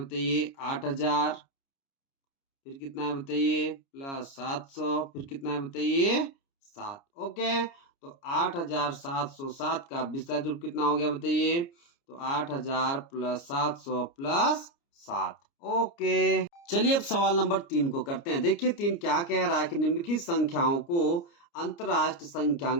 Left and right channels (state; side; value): late; right; 29 ms